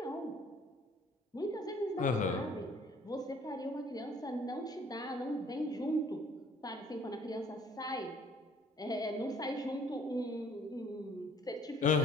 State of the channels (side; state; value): both; normal; correlation 0.58